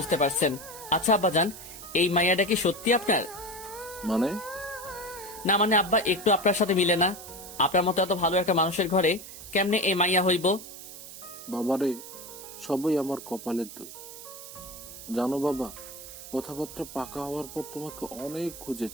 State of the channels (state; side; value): noise; right; hiss, 13 dB below the sound